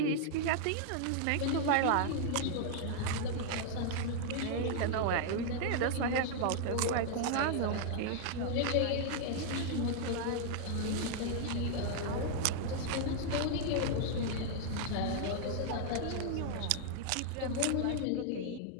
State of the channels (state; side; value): different; both; correlation -0.01